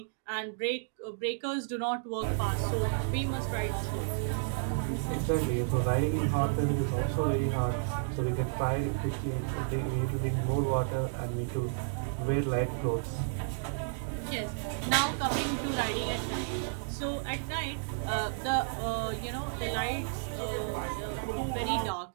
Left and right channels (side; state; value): left; silent; digital silence